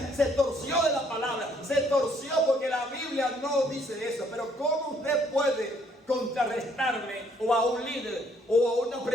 se torció de la palabra, se torció porque la Biblia no dice eso. Pero ¿cómo usted puede contrarrestarme o a un líder o a una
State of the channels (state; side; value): normal; both; correlation 0.65